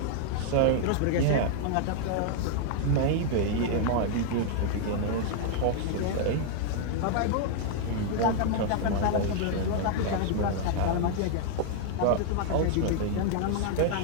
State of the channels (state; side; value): different; both; correlation 0.00